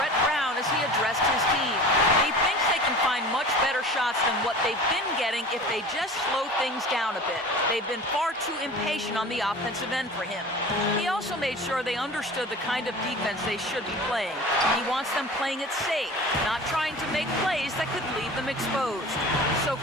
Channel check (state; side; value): normal; both; correlation 0.38